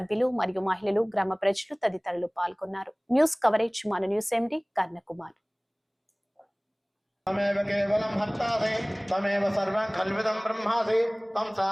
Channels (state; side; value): identical; both; correlation 1.00